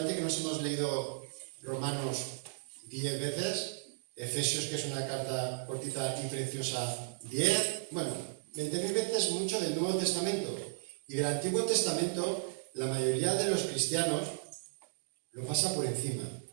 que nos hemos leído Romanos 10 veces, Efesios, que es una carta cortita y preciosa, 10, bueno, 20.000 veces mucho del Nuevo Testamento. Y del Antiguo Testamento, la mayoría de los cristianos lo pasa por encima,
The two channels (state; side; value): silent; left; digital silence